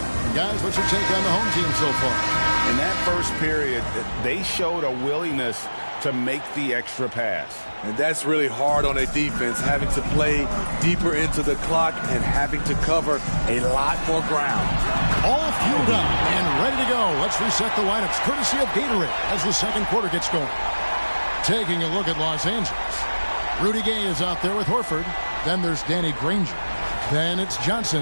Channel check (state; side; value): inverted; both; correlation -1.00